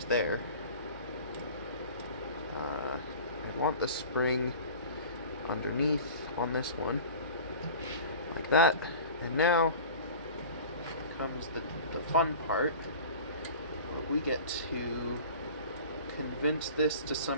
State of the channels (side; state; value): both; inverted; correlation -0.40